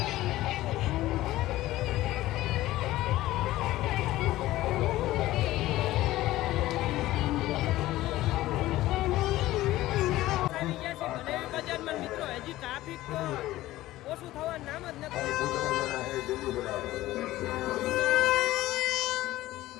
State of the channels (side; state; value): right; quieter; 16.2 dB